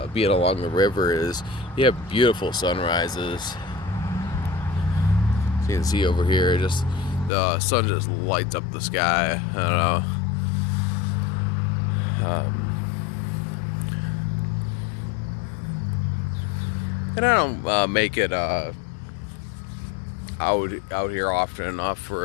being along the river is you have beautiful sunrises. You can see over here, just the sun just lights up the sky. I don't know. And I don't make it out here often enough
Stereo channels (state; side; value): drops out; right; at 7.3 s